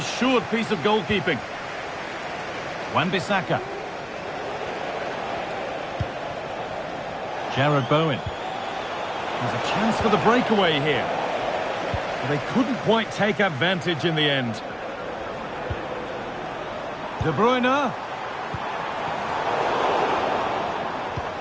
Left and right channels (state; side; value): identical; both; correlation 1.00